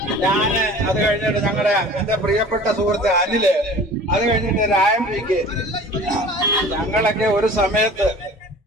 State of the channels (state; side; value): normal; both; correlation 0.44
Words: ഞാന് അത് കഴിഞ്ഞിട്ട് എന്റെ പ്രിയപ്പെട്ട സുഹൃത്ത് അനില്, അത് കഴിഞ്ഞിട്ട് രായംപിക്ക്, ഞങ്ങളൊക്കെ